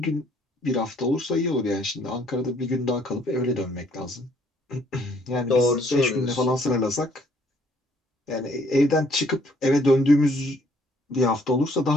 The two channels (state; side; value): normal; both; correlation 0.64